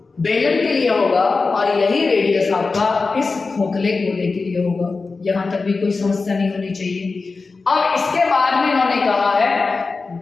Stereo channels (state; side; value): quieter; right; 4.1 dB